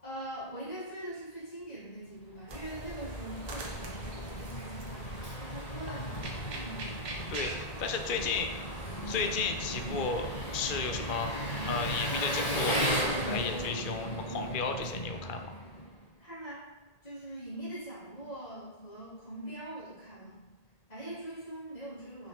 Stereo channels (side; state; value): right; late; 1.8 ms